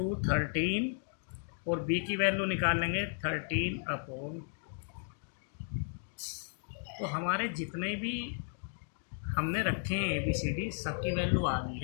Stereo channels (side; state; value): right; silent; digital silence